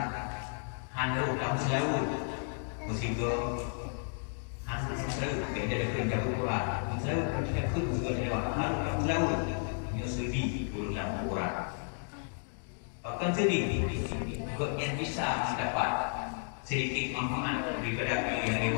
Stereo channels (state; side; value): silent; right; 56 dB below the other